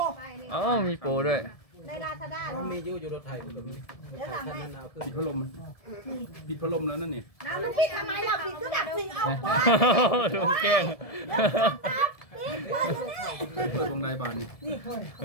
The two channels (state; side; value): late; right; 1.7 ms